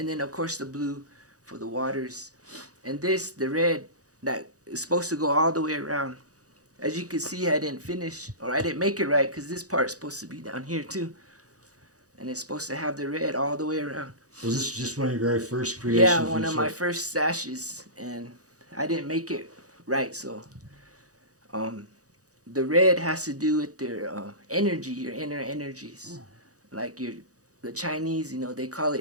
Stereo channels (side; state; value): left; late; 0.66 ms